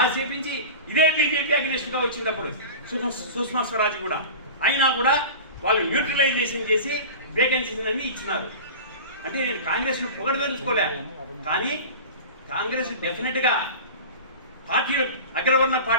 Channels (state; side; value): inverted; both; correlation -0.32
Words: చేయించి ఇదే బీజేపీ అగ్నిస్ట్గా వచ్చినప్పుడు సుష్మా స్వరాజ్ కూడా అయినా కూడా వాళ్ళు న్యూట్రలైజేషన్ చేసి వేకెన్సీస్ అన్ని ఇచ్చినారు. అంటే నేను కాంగ్రెస్ను పొగడదలుచుకోలే, కానీ కాంగ్రెస్ డెఫినెట్గా పార్టీలు అగ్రవర్ణ